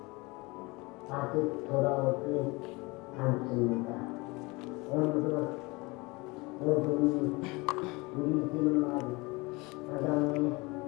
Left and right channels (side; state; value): right; quieter; 25.0 dB